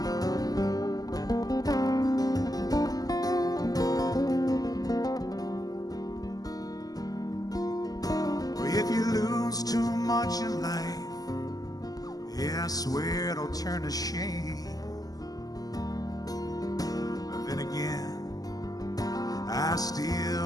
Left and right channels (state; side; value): late; right; 0.18 ms